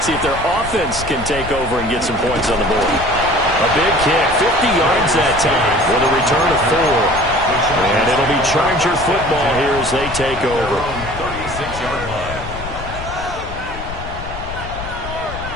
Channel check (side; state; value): left; noise; rumble, 10 dB below the sound